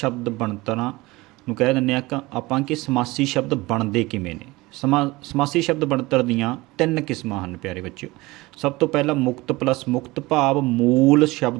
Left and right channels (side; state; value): left; quieter; 21.0 dB